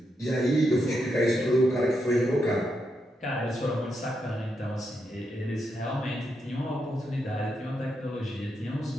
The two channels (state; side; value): normal; both; correlation 0.83